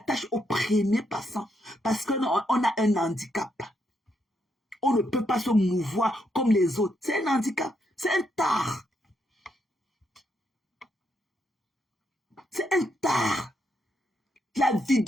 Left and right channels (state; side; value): normal; both; correlation 0.78